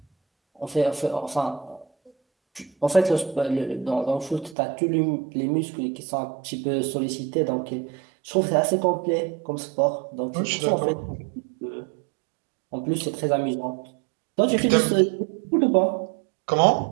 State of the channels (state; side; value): drops out; left; at 4.5 s